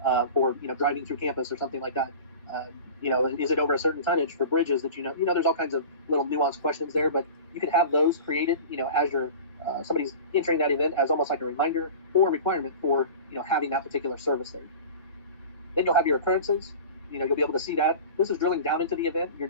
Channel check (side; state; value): both; inverted; correlation -0.37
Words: for, driving through campus or something like that. Is it over a certain tonnage for bridges that, there's all kinds of little nuanced questions there, but you can have those created, as you're somebody's entering that event as almost like a reminder or requirement for, having that particular service there. Then you'll have your occurrences. You'll be able to see that. This is drilling down into the event. Your